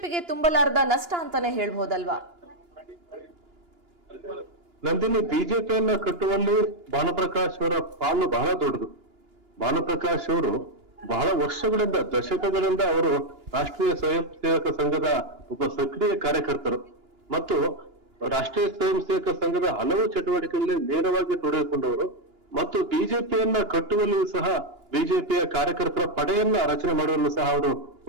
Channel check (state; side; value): late; left; 2.9 ms